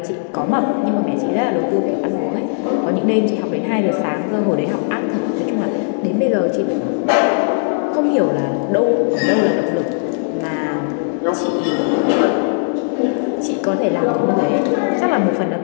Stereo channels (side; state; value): right; silent; 67 dB below the other